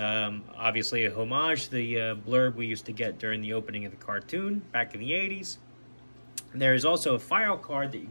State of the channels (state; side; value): inverted; both; correlation -1.00